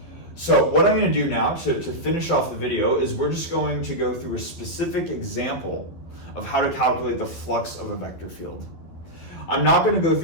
So what I'm going to do now to finish off the video is we're just going to go through a specific example of how to calculate the flux of a vector field. I'm not going to go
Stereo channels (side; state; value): right; late; 12 ms